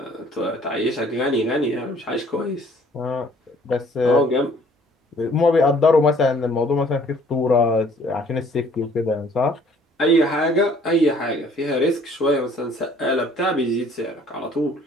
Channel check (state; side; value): normal; both; correlation 0.58